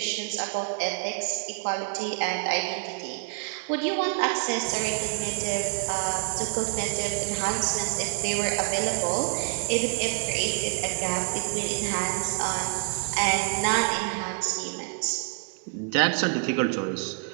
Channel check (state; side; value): quieter; left; 37.0 dB